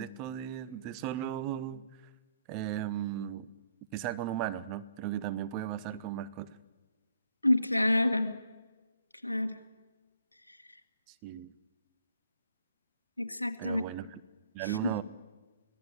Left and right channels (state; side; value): inverted; both; correlation -0.68